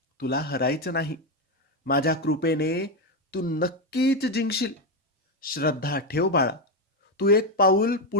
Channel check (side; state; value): both; normal; correlation 0.08